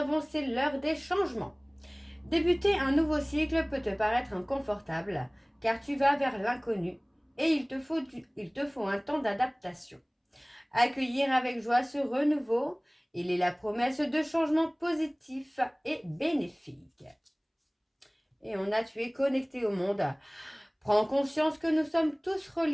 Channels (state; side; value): identical; both; correlation 1.00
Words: c'est l'heure des changements. Débuter un nouveau cycle peut te paraître inconfortable, car tu vas vers l'inconnu et il te faut un temps d'adaptation. Accueillir avec joie ce renouveau, il est la promesse de changements positifs et bénéfiques. Et on a, tu es connecté au monde. Prends conscience que nous sommes tous